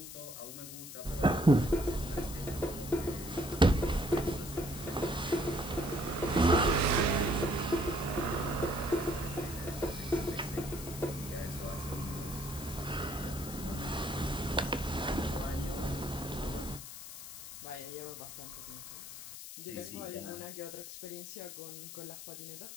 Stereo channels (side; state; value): left; noise; hiss, 11 dB below the sound